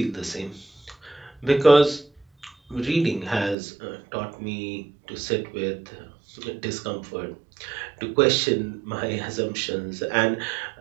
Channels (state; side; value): drops out; left; at 3.6 s